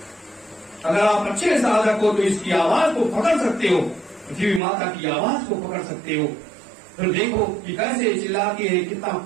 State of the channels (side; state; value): left; drops out; at 4.6 s